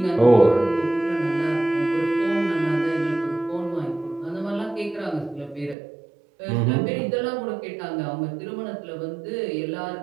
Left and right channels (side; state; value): left; drops out; at 5.8 s